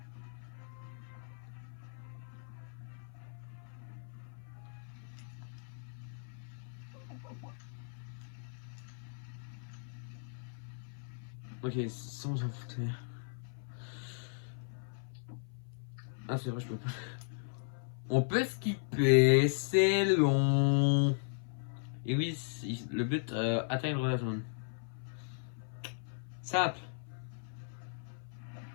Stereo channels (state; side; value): silent; right; 53 dB below the other